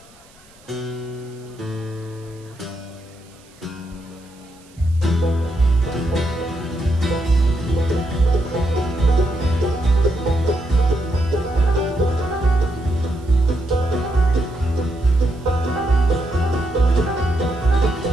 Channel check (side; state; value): right; noise; hiss, 28 dB below the sound